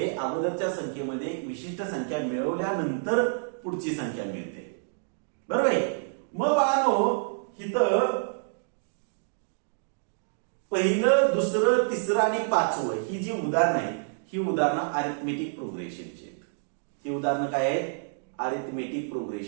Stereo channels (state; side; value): silent; left; digital silence